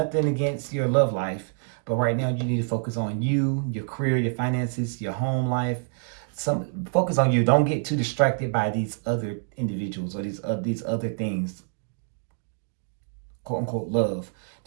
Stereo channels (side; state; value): left; silent; 61 dB below the other